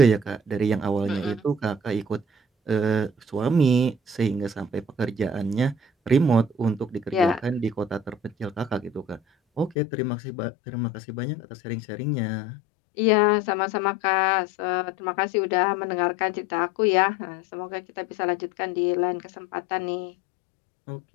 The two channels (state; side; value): drops out; right; at 9.8 s